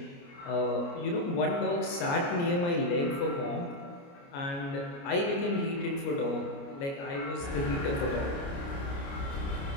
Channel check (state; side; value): late; right; 29 ms